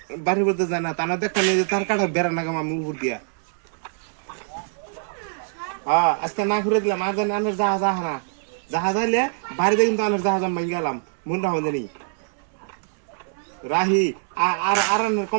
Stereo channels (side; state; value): left; silent; 63 dB below the other